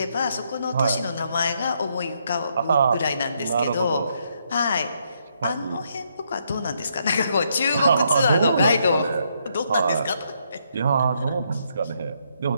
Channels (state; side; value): inverted; both; correlation -0.75